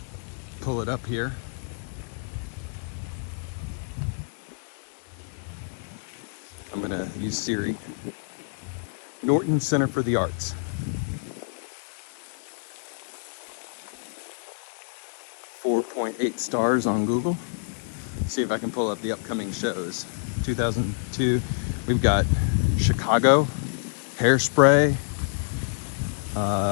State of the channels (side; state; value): right; silent; digital silence